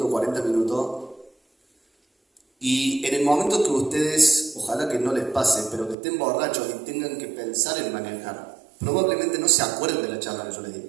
40 minutos, y en el momento que ustedes, ojalá que no les pase, pero que estén borrachos y tengan que pensar en manejar, probablemente no se acuerden de la charla que yo les di.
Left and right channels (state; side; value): drops out; left; at 6.0 s